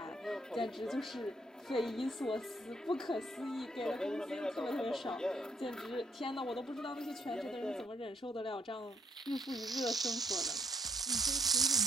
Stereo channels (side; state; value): both; normal; correlation 0.70